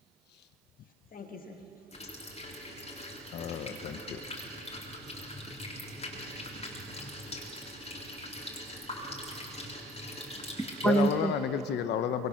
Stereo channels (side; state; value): both; normal; correlation 0.52